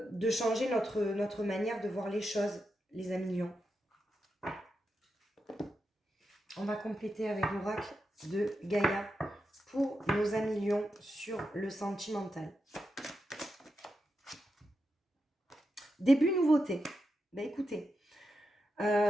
changer notre manière de voir les choses, les amis lions. On va compléter avec l'oracle de Gaïa pour nos amis lions sur le sentimental. Début nouveauté. Ben écoutez,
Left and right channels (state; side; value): normal; both; correlation 0.87